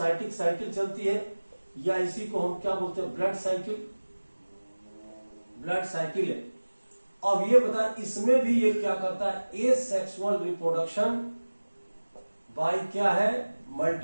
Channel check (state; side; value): inverted; both; correlation -1.00